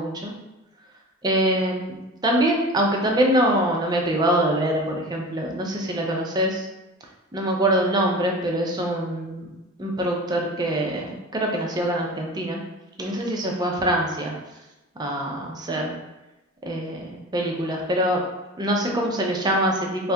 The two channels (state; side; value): normal; both; correlation 0.35